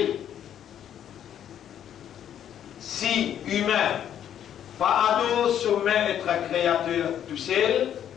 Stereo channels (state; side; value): quieter; right; 10.0 dB